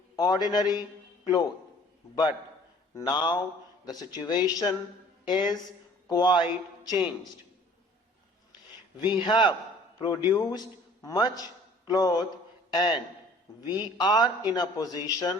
ordinary cloth. But now the situation is quite changed. We have produced much cloth and we are in a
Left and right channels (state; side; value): normal; both; correlation 0.52